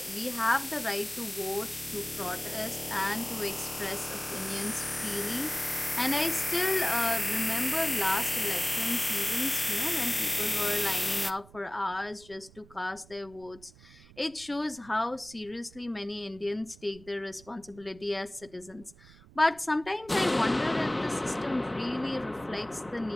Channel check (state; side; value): noise; right; rumble, 23 dB below the sound